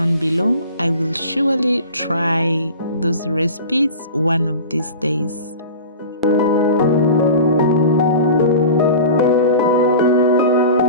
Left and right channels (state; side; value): inverted; both; correlation -0.36